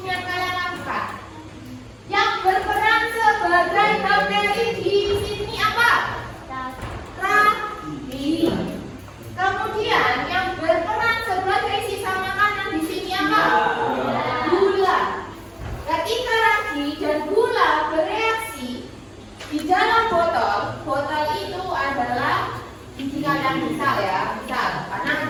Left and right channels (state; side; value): identical; both; correlation 1.00